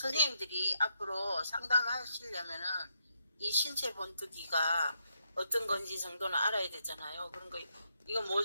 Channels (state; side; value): inverted; both; correlation -0.78